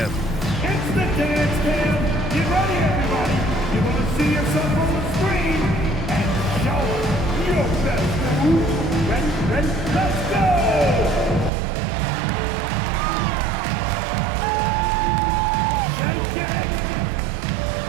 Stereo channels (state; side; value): drops out; left; at 11.5 s